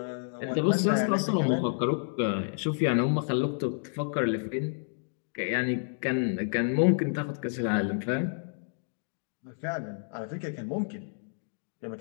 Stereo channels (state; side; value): silent; right; digital silence